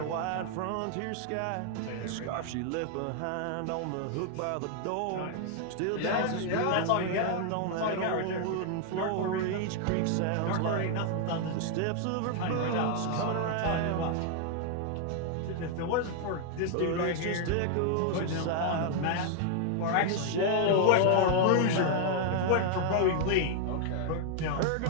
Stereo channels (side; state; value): both; different; correlation 0.00